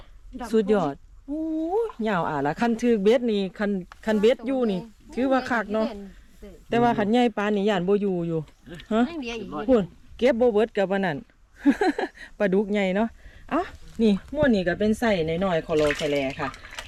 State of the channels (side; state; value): both; identical; correlation 1.00